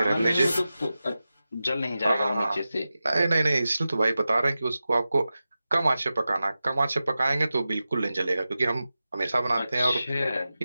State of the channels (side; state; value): both; inverted; correlation -0.93